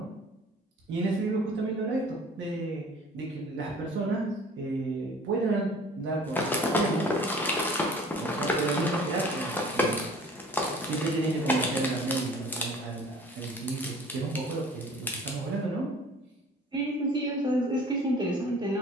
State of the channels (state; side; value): normal; both; correlation 0.49